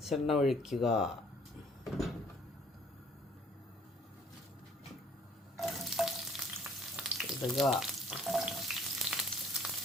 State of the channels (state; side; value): normal; both; correlation 0.57